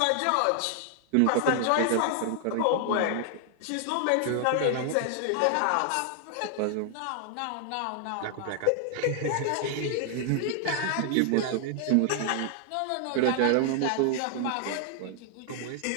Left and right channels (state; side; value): different; both; correlation 0.00